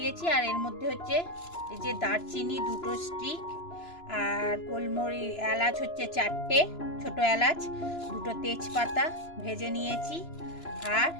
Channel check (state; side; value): late; right; 2.9 ms